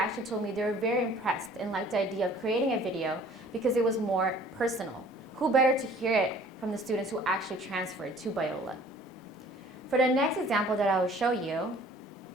told me they were very impressed and liked the idea of creating a video because it was more personal. Who better to hear it from the students who actually transferred to Biola? For the next example that I will show you,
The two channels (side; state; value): both; normal; correlation 0.53